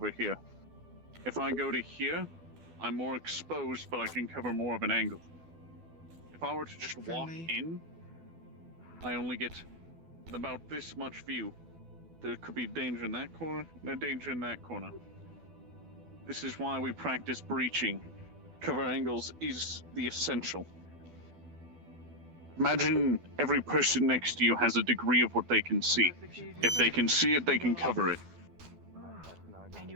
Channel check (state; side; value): late; left; 12 ms